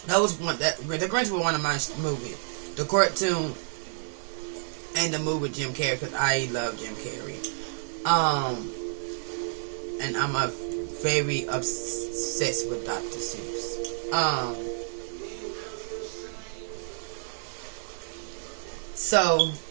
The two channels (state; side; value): silent; left; digital silence